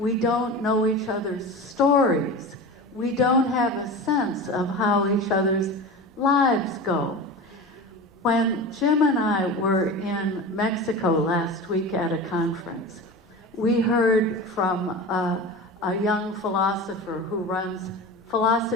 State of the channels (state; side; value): normal; both; correlation 0.30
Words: don't know each other's stories. We don't have a sense of how each other's lives go. When Jim and I were in Mexico last week at a conference, we heard from a young philosopher who runs